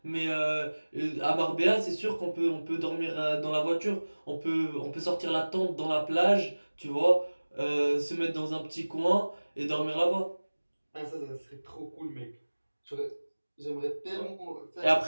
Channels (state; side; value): inverted; both; correlation -1.00